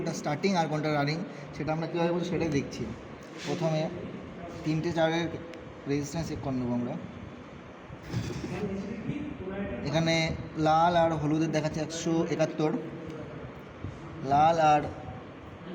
স্টার্টিং আর কোনটা রানিং সেটা আমরা কীভাবে বলছি সেটাই দেখছি। প্রথমে 3টে তারের রেজিস্ট্যান্স চেক করে নেবো আমরা। এখানে লাল আর হলুদের দেখাচ্ছে 171, লাল আর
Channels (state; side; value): identical; both; correlation 1.00